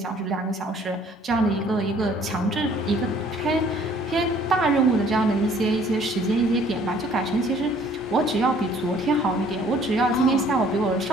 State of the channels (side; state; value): both; normal; correlation 0.58